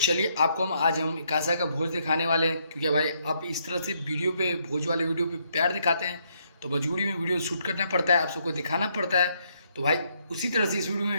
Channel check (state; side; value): inverted; both; correlation -0.73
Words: आपको हम कासा का भोज दिखाने वाले हैं, क्योंकि भाई आप इस तरह से वीडियो पे, भोज वाले वीडियो पे प्यार दिखाते हैं, तो मजबूरी में वीडियो शूट करना पड़ता है, आप सबको दिखाना पड़ता है। तो भाई उसी तरह से इस वीडियो में